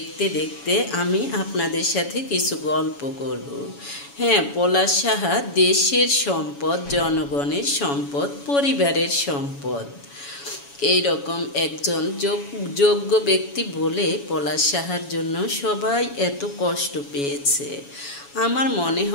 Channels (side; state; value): right; late; 7.1 ms